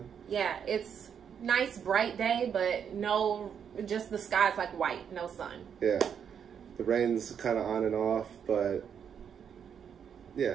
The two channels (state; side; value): quieter; left; 7.8 dB